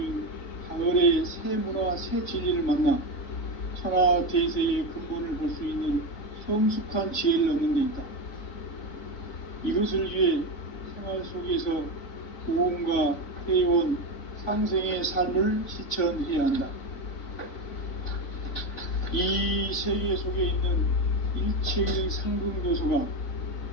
가을의 새 문화, 새 진리를 만나 천하 대세의 근본을 볼 수 있는 성숙한 지혜를 얻는 데 있다. 이것을 위해 생활 속에서 구원과 회원, 상생의 삶을 실천해야 한다. 이 세계 속에 있는 일체의 상금 요소가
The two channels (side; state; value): right; late; 3.5 ms